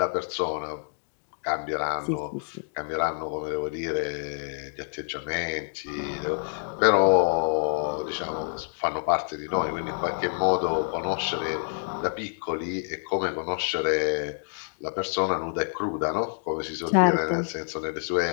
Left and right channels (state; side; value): silent; right; digital silence